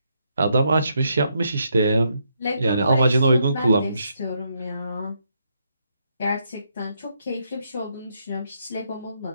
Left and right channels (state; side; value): inverted; both; correlation -0.77